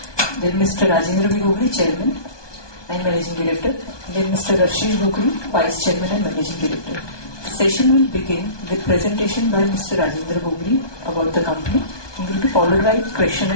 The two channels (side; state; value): right; late; 1.2 ms